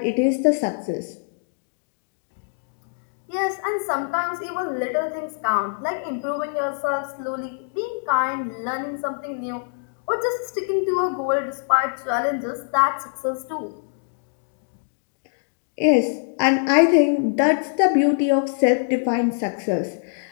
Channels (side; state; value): right; silent; digital silence